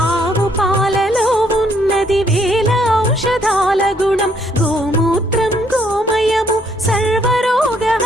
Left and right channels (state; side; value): normal; both; correlation 0.68